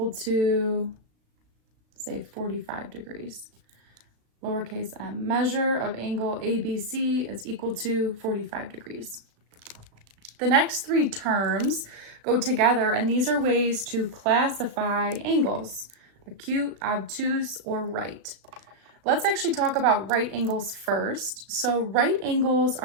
to, say, 45 degrees. Lowercase m, measure of angle ABC is equal to 45 degrees. The next three terms go together, and these are ways to classify angles: acute, obtuse, or right. Let's actually talk about right angles first. So right angles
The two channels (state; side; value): late; left; 36 ms